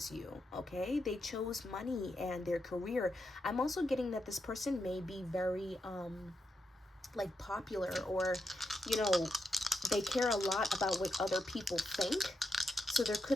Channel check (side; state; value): both; normal; correlation 0.84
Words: you. Okay, they chose money and their career. I'm also getting that this person may be very like popular, or, you know, they care a lot about what other people think. So there